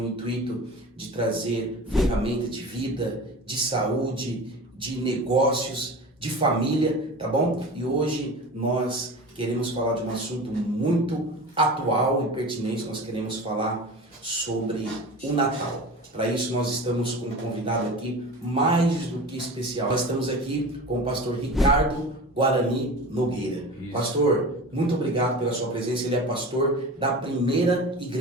intuito de trazer ferramentas de vida, de saúde, de negócios, de família, tá bom? E hoje nós queremos falar de um assunto muito atual e pertinente. Nós queremos falar sobre o Natal. Para isso nós estamos com um convidado aqui mais do que especial. Nós estamos aqui com o pastor Ricardo Guarani Nogueira. Isso. Pastor, muito obrigado pela sua presença. Ele é pastor da primeira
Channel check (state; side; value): normal; both; correlation 0.33